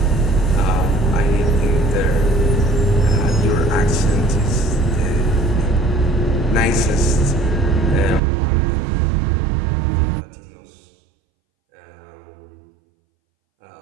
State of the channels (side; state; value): left; drops out; at 8.2 s